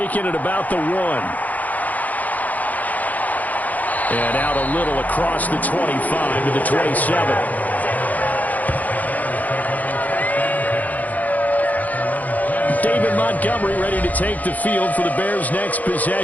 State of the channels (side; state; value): right; late; 0.078 ms